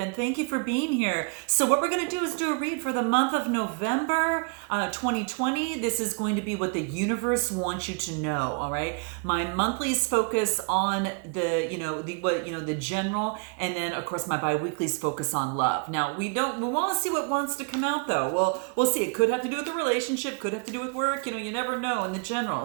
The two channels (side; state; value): left; quieter; 37.5 dB